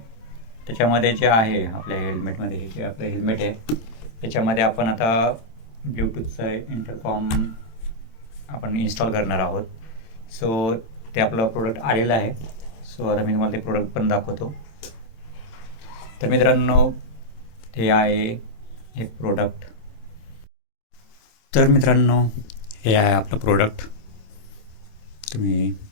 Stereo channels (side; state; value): right; late; 27 ms